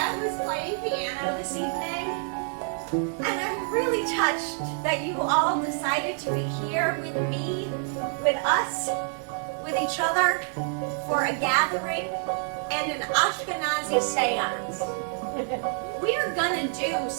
who's playing piano this evening. And I'm really touched that you all decided to be here with me, with us, with each other for a gathering and an Ashkenazi Seance. We are gonna do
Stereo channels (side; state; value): left; silent; 60 dB below the other